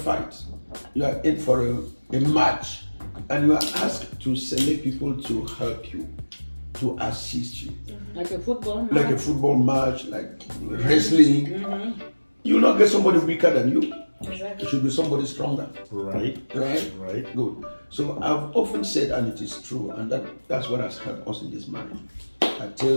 you are in for a match, and you are asked to select people to help you, to assist you. Like a football match. Like a football match, like wrestling. You will not get somebody weaker than you. Exactly. It should be somebody stronger. Right. Good. So I've often said, and it is true, and that's what has helped us in this marriage. I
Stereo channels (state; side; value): inverted; both; correlation -1.00